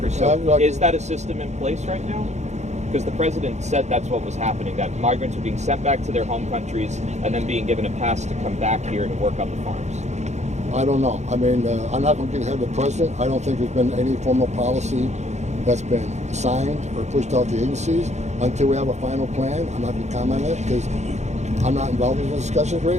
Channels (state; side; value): late; left; 0.33 ms